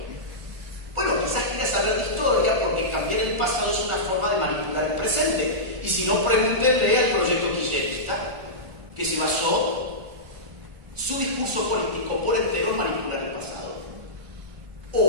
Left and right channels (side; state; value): left; late; 1.4 ms